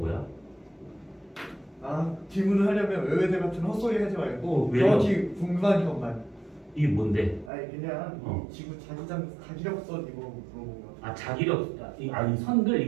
질문을 하려면 외외대 같은 헛소리 하지 말고 왜요? 정확히 궁금한 것만. 이게 뭔데? 아니 그냥 이 지구 자기력선 이거 물어본 거. 자기력, 아니 선들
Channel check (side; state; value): left; drops out; at 7.5 s